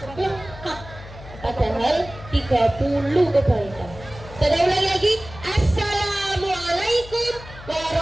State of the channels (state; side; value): noise; left; hum, 16 dB below the sound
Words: lengkap, padahal 30 kebaikan. Saya ulangi lagi. Assalamualaikum